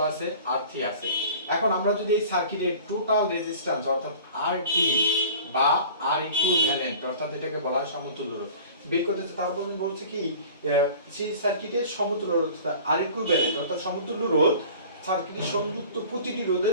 আছে, R3 আছে। এখন আমরা যদি এই সার্কিটের টোটাল রেজিস্ট্যান্স অর্থাৎ RT বা R ইকুইভ্যালেন্ট, অর্থাৎ এটাকে বলা হয় সমতুল্য রোধ, বের করতে চাই, তারপর বলছে কি সিরিজ সার্কিটের সমতুল্য রোধ R ইকুইভ্যালেন্ট অর্থাৎ সমতুল্য রোধ সার্কিটের সংযুক্ত প্রতিটি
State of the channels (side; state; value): both; inverted; correlation -0.43